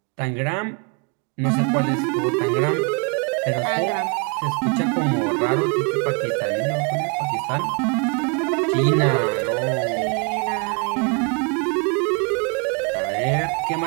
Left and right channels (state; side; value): quieter; left; 34.0 dB